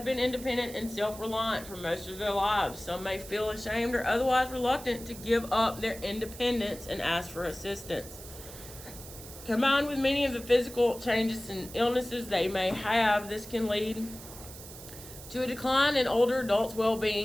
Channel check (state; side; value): noise; right; hiss, 15 dB below the sound